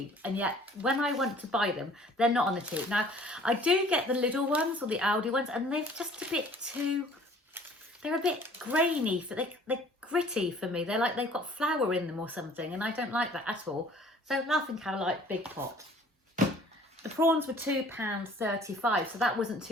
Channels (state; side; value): normal; both; correlation 0.53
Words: and yet when I want to buy them, they're not on the cheap. Now I do get the Lidl ones or the Aldi ones, and they're just a bit too, they're a bit grainy, they're gritty for me. They're like they've got flour in them or something, and I don't like that at all. So Laughing Cow Light, big pot. The prawns were £2.35, so that wasn't